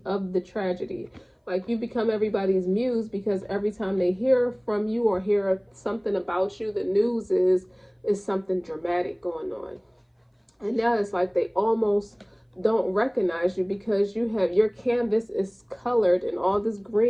of the tragedy. Like, you become everybody's muse because every time they hear from you or hear something about you, the news is something dramatic going on. And now it's like they almost don't recognize you because you have, your canvas is colored in all this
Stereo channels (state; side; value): identical; both; correlation 1.00